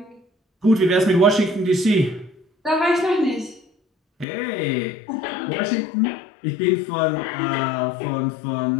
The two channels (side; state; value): right; drops out; at 4.2 s